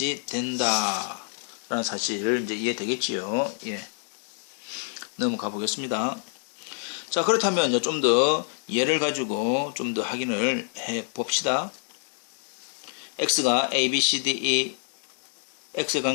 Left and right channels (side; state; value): right; silent; 60 dB below the other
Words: 된다 라는 사실을 이제 이해되겠지요. 예. 넘어가 보겠습니다. 자, 그렇다면 좀 더 예를 가지고 좀 더 확인을 해 봅시다. X가 A, B, C, D, E, X에